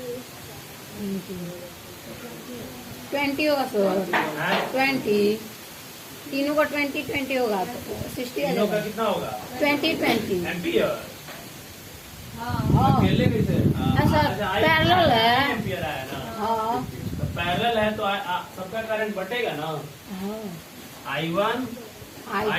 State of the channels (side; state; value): both; identical; correlation 1.00